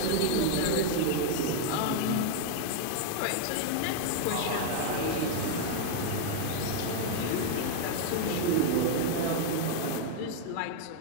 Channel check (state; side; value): different; both; correlation 0.00